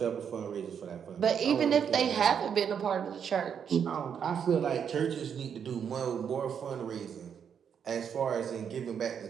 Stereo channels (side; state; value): left; quieter; 7.7 dB